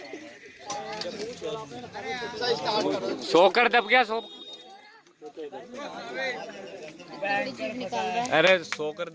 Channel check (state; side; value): identical; both; correlation 1.00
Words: सोकर दब गया। अरे सोकर